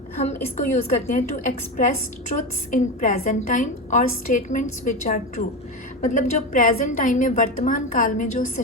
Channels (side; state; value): both; normal; correlation 0.19